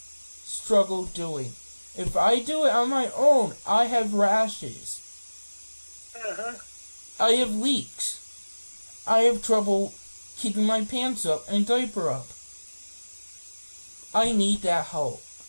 doing. If I do it on my own, I have rashes. uh-huh. I have leaks. I have trouble keeping my pants up and diaper up. I need that help.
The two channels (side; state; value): both; inverted; correlation -1.00